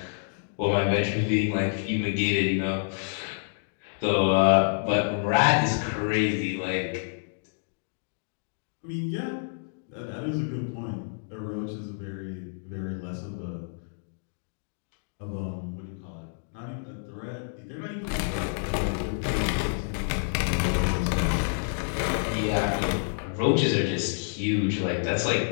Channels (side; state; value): right; silent; digital silence